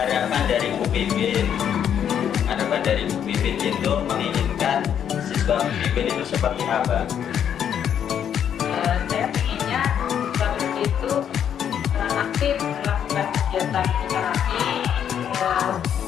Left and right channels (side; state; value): right; quieter; 9.0 dB